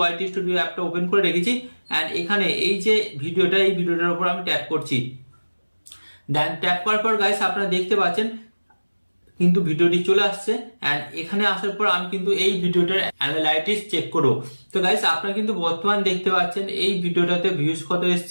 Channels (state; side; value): inverted; both; correlation -1.00